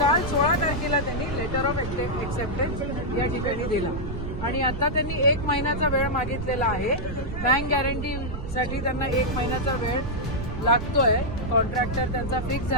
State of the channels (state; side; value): noise; right; rumble, 7 dB below the sound